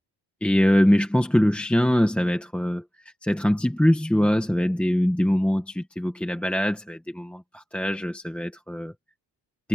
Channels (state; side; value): normal; both; correlation 0.98